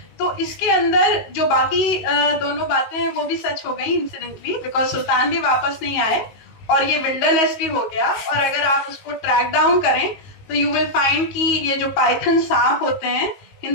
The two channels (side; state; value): right; late; 19 ms